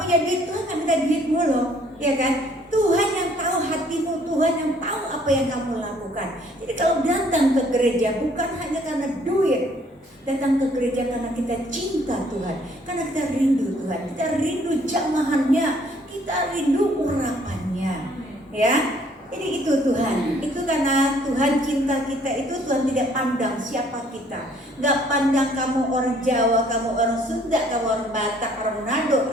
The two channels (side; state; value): both; normal; correlation 0.61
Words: punya duit. Tuhan nggak minta duitmu loh, ya kan? Tuhan yang tahu hatimu, Tuhan yang tahu apa yang kamu lakukan. Jadi kalau datang ke gereja bukan hanya karena duit, datang ke gereja karena kita cinta Tuhan, karena kita rindu Tuhan, kita rindu jamahannya, kita rindu urapannya, ya. Jadi itu Tuhan, itu karena Tuhan cinta kita itu. Tuhan tidak pandang siapa kita, nggak pandang kamu orang Jawa, kamu orang Sunda, kamu orang Batak, orang Manado